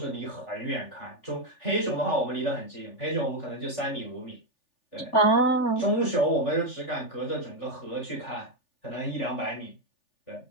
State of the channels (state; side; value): late; right; 3.4 ms